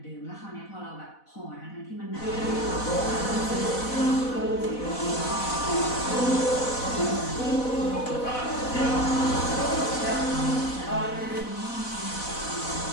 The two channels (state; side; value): late; right; 4.1 ms